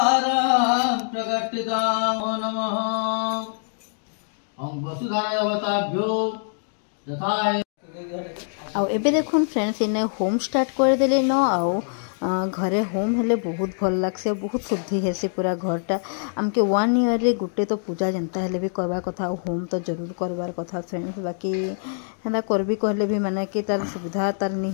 प्रकटितां नमः ओम वसुधाराय अवताभ्यो यथाय आउ एबे देखुन फ्रेंड्स इने होम स्टार्ट कर देले न आउ घरे होम हेले बहुत भल लागसे बहुत शुद्धि हेसी पूरा घरटा आमके 1 ईयर रे गुटे तो पूजा जनता हेले भी करबा कथा होम तो जरूर करबार कथा फ्रेंड्स बाकी हेना करबी कहले भी माने कि तार सुविधा तार नी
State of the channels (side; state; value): right; silent; digital silence